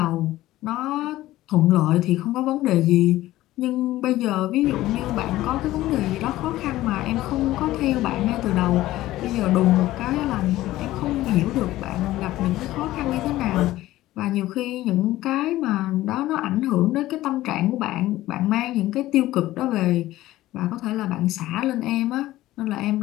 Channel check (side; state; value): right; quieter; 15.9 dB